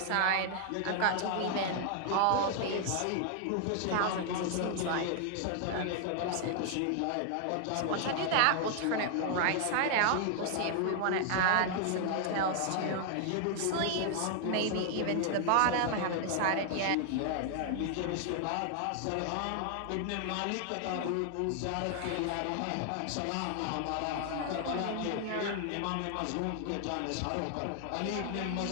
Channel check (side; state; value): both; different; correlation 0.00